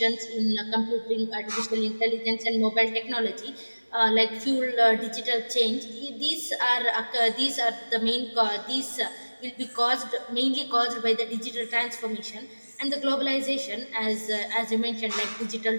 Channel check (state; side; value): inverted; both; correlation -1.00